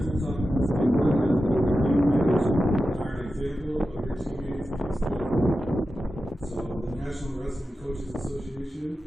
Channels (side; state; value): both; normal; correlation 0.92